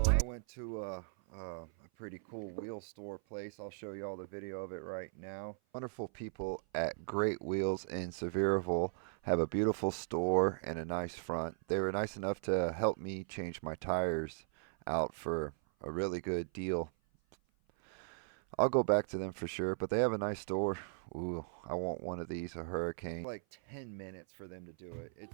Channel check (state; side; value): silent; left; 53 dB below the other